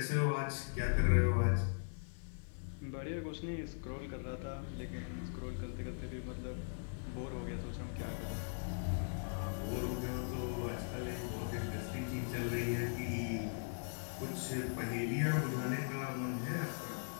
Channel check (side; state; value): right; silent; digital silence